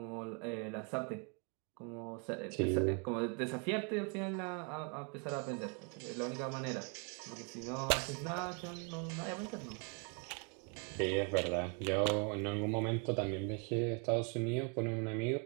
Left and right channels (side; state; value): left; quieter; 36.9 dB